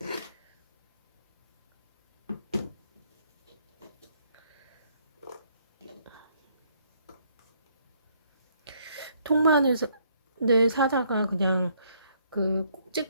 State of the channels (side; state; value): both; inverted; correlation -0.68